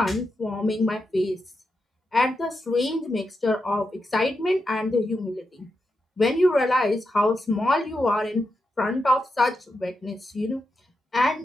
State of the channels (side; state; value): both; normal; correlation 0.86